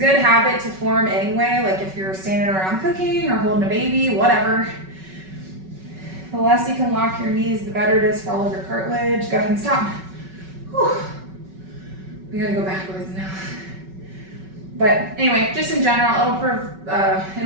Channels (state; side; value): late; left; 5.3 ms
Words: habit to form anyway, like if you're standing around cooking or holding a baby, whatever. The less you can lock your knees, the better it is for all of your cartilage. Go ahead and stop. Whew. We gotta go backwards now. But anyway, just in general,